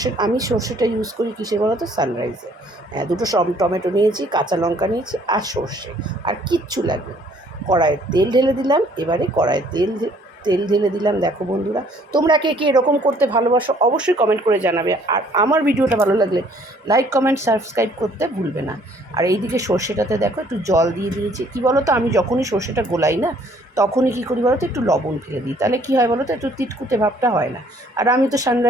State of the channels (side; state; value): both; normal; correlation 0.60